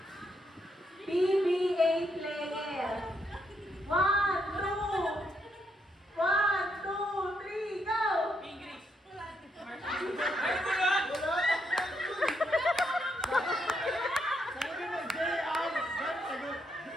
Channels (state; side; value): normal; both; correlation 0.77